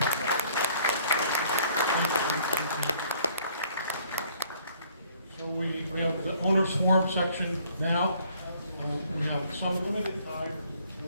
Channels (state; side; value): inverted; both; correlation -0.60